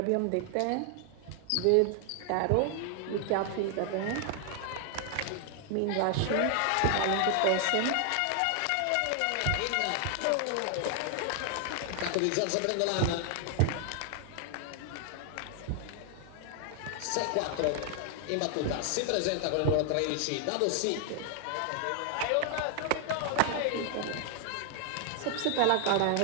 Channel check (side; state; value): both; different; correlation 0.00